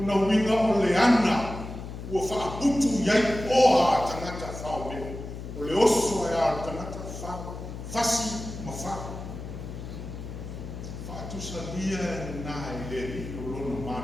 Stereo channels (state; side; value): noise; left; hum, 9 dB below the sound